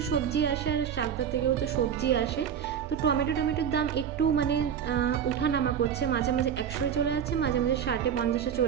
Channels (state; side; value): quieter; left; 8.4 dB